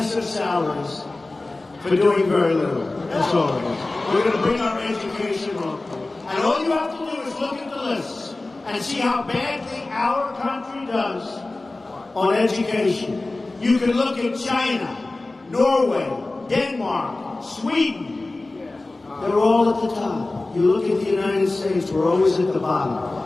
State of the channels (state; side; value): quieter; right; 3.1 dB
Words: salaries for doing very little. That's all it is. We're going to bring our education local. And all you have to do is look at the lists and see how badly our country does on education. You can look at China, Norway, Denmark, Sweden. They're all at the top. You look at the United States, we're always at the bottom.